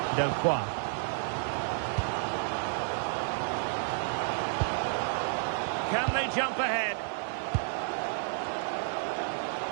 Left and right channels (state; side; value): silent; left; 57 dB below the other